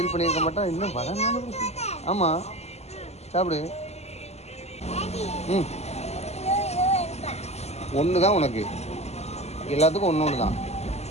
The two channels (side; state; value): right; late; 0.31 ms